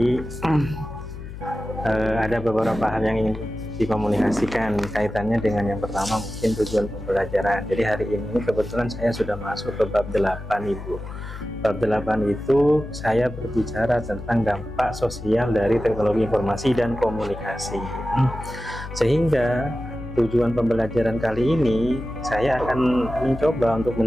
ada beberapa hal yang ingin dikomunikasikan kaitannya dengan yang pertama mungkin tujuan pembelajaran. Jadi hari ini kebetulan saya sudah masuk ke bab 8 Ibu. Bab 8 itu saya berbicara tentang dampak sosial dari teknologi informasi dan komunikasi. Sehingga tujuan pembelajaran kali ini saya akan mencoba untuk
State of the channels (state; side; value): noise; left; hum, 11 dB below the sound